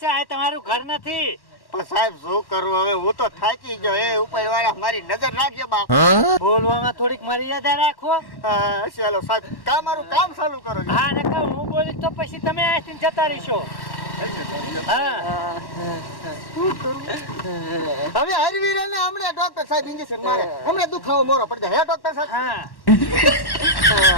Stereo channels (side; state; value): right; late; 1.1 ms